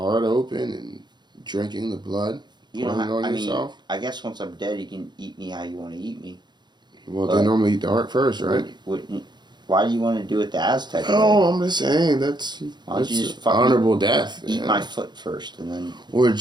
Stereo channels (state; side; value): late; left; 0.21 ms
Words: open and drinking the blood, You pouring don't it have, on I mean, yourself. I guess once I'm dead, you can eat me how you want to eat me. Well, but- they normally eat the heart first, right? Why do you want to do it the Aztec way? Oh, I'm just saying that's, Why don't you that's just fucking honorable death. Eat yeah. my foot first, and then Or